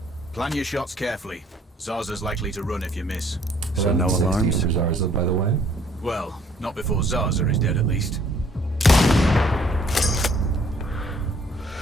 Plan your shots carefully. Zarza's likely to run if you miss. So no 1160 alarms? for Zarza, by the way. Well, not before Zarza is dead at least.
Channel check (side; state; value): both; normal; correlation 0.61